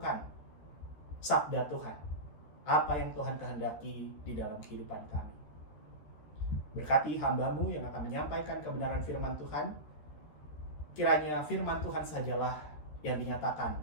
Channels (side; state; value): right; late; 13 ms